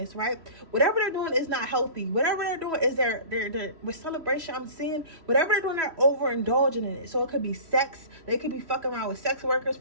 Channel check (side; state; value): left; late; 3.1 ms